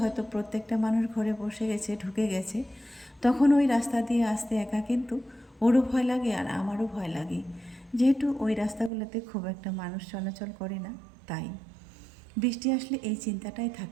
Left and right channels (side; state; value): left; drops out; at 8.9 s